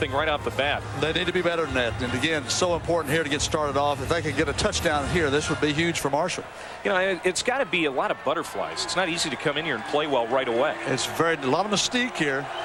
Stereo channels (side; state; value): both; identical; correlation 1.00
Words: right off the bat. They need to be better than that. And again, so important here to get started off. If they could get a touchdown here, this would be huge for Marshall. You know, it's got to be a lot of butterflies. It's not easy to come in here and play well right away. It's a lot of mystique here.